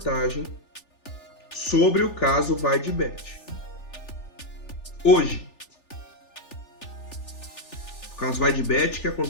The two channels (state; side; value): late; right; 3.4 ms